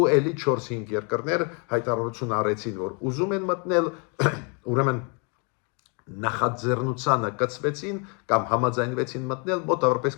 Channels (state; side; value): quieter; right; 35.5 dB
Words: էլի 4-5 երկրներ հայտարարություն արեցին, որ ուզում են մտնել, ուրեմն նախաձեռնությանը կցվեցին կամ համաձայնվեցին մտնել